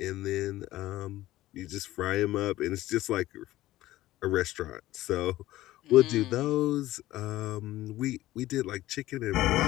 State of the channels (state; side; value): quieter; right; 15.9 dB